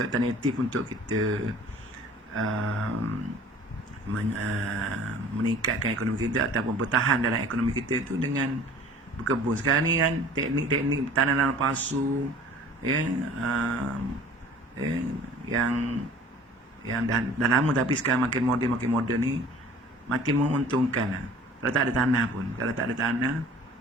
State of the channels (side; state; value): both; normal; correlation 0.48